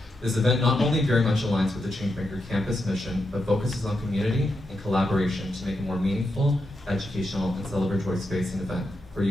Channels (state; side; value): normal; both; correlation 0.85